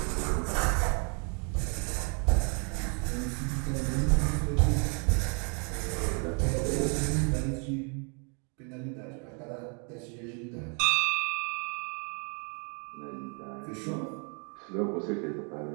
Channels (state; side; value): quieter; left; 37.2 dB